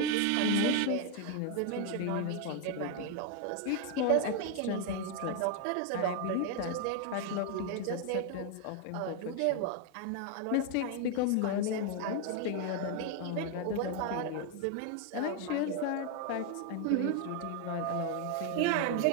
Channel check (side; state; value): both; different; correlation 0.01